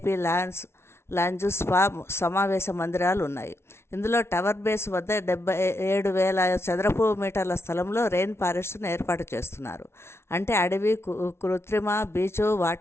lounge, spa, సమావేశ మందిరాలు ఉన్నాయి. ఇందులో టవర్ బేస్ వద్ద 77,000 చదరపు మీటర్ల స్థలంలో రెయిన్ ఫారెస్ట్ను ఏర్పాటు చేస్తున్నారు. అంటే అడవి, కృత్రిమ బీచ్,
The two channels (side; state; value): right; late; 0.12 ms